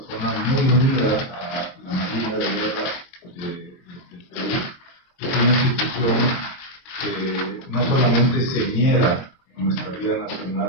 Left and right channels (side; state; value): right; late; 23 ms